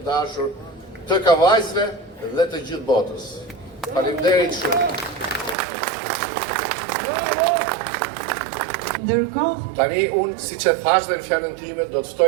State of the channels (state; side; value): drops out; left; at 5.6 s